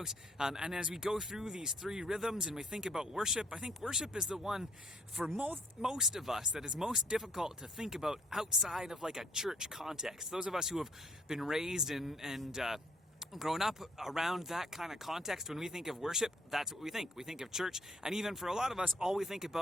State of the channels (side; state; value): both; normal; correlation 0.64